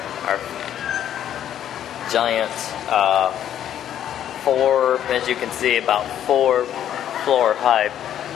giant, as you can see, about 4-floor high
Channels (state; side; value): quieter; right; 10.5 dB